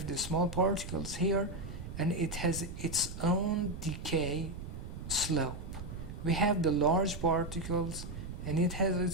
the small particles here, and it has its own decay slope. We have the large particles, and it has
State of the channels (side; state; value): right; noise; rumble, 9 dB below the sound